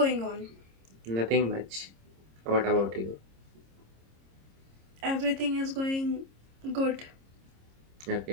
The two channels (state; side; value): late; left; 26 ms